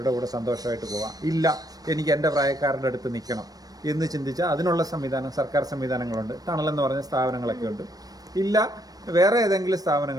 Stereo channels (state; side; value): late; left; 0.18 ms